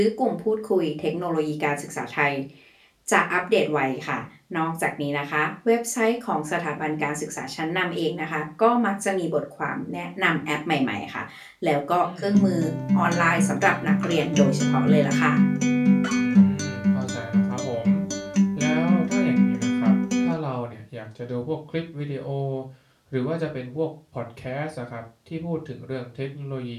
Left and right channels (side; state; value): both; identical; correlation 1.00